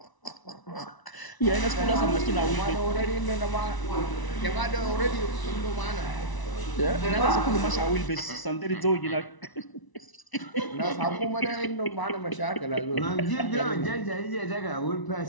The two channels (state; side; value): late; right; 1.0 ms